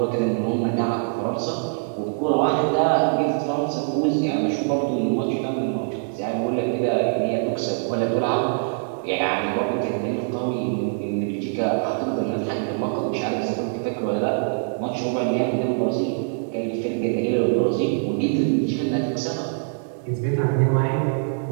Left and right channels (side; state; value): left; silent; digital silence